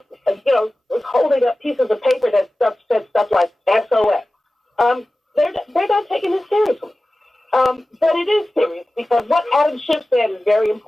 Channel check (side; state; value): both; normal; correlation 0.95